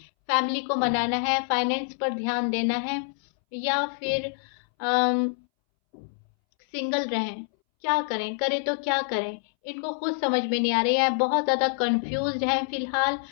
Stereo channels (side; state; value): right; silent; 61 dB below the other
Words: फैमिली को मनाना है, फाइनेंस पर ध्यान देना है, या फिर सिंगल रहें, क्या करें, करें तो क्या करें, इनको खुद समझ में नहीं आ रही है, बहुत ज़्यादा कंफ्यूज्ड हैं फिलहाल।